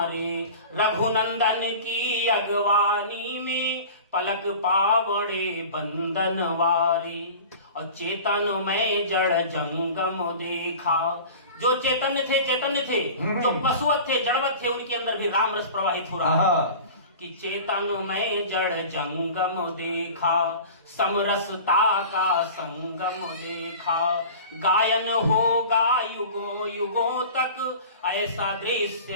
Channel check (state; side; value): inverted; both; correlation -0.38